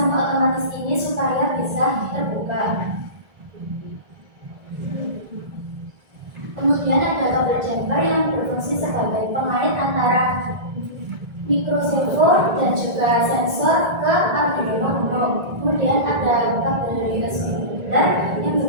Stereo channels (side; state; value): left; late; 1.8 ms